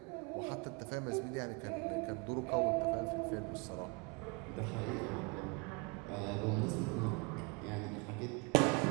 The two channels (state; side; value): quieter; left; 29.0 dB